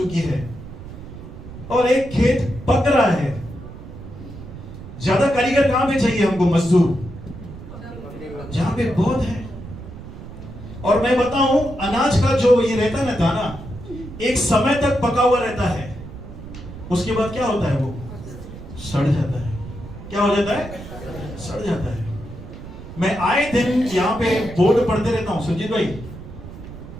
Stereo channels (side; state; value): right; noise; rumble, 13 dB below the sound